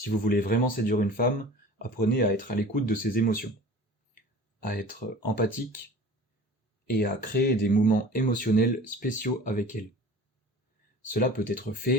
vous voulez vraiment séduire une femme, apprenez à être à l'écoute de ses émotions, à être empathique et à créer des moments émotionnels spéciaux avec elle. Cela peut être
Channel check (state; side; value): normal; both; correlation 0.41